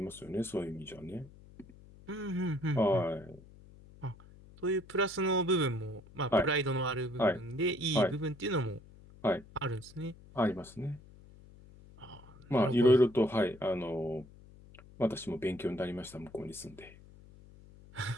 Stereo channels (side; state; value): left; noise; hum, 21 dB below the sound